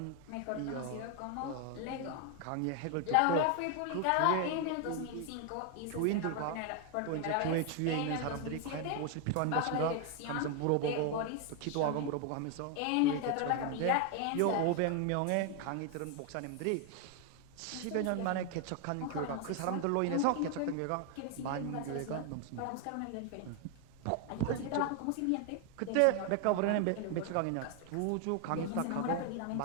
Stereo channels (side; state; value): both; different; correlation 0.01